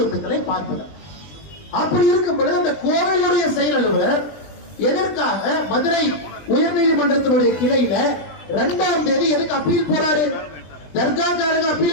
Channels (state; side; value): late; right; 20 ms